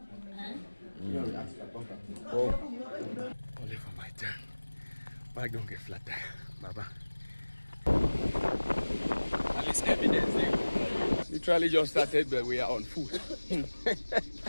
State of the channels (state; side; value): inverted; both; correlation -1.00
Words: Only for my turn. Bike don't get flat tire, Baba. At least evidence there. Literally just started, but we are on foot.